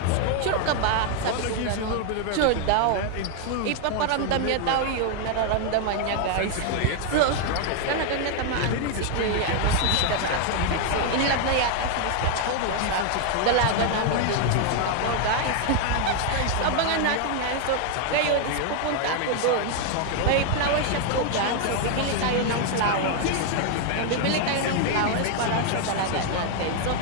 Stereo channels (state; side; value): different; both; correlation 0.00